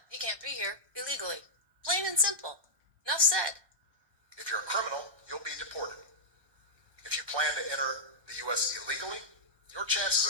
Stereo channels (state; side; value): late; left; 1.2 ms